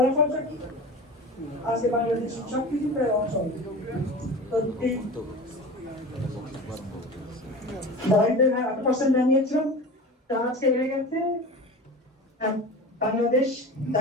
কি? আজকে বাংলাদেশ সবকিছু প্রায় অচল। দারিদ্রের 8% জানিয়েছিলাম, তা আজকে বেড়ে গেছে। বাংলাদেশ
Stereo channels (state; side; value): normal; both; correlation 0.33